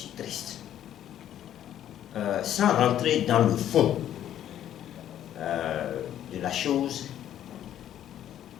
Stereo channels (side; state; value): right; quieter; 11.1 dB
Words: triste. Sans rentrer dans le fond de la chose,